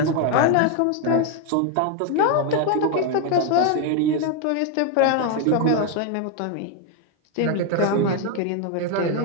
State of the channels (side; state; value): both; different; correlation 0.01